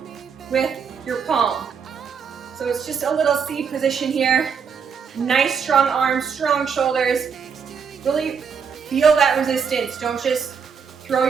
with your palm. So it's just a little C position here. Nice strong arms, strong shoulders. Really feel that resistance. Don't just throw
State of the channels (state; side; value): quieter; left; 6.5 dB